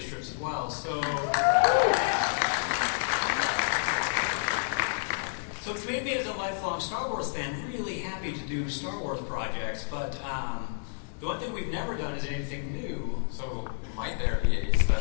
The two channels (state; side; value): silent; right; digital silence